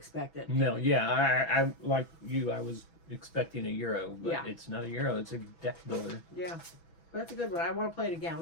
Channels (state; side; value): late; right; 6.0 ms